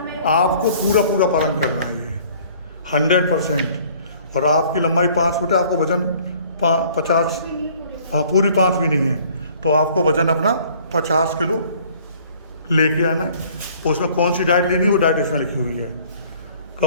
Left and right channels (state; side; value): inverted; both; correlation -0.55